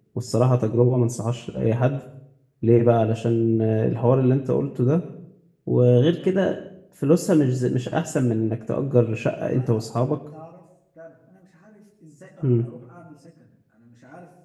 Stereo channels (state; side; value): identical; both; correlation 1.00